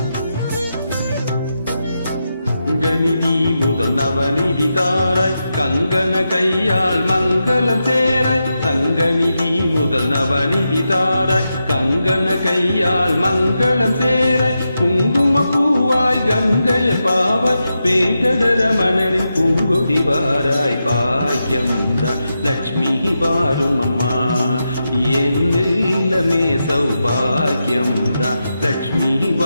கங்கநிதி முதல் நவநிதி தாராய், கங்கண கையால் மங்களம் சேராய். சங்கநிதி முதல் நவநிதி தாராய், கங்கண கையால் மங்களம் சேராய். குங்கும பூவாய் கங்கைய பாவாய், வேங்கடரமணனின் பூங்கொடி வாராய். பாக்கியம் தான் லட்சுமி வாரும் அம்மா. என் இல்லமே சௌபாக்கியம் தான் லட்சுமி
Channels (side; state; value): both; inverted; correlation -0.88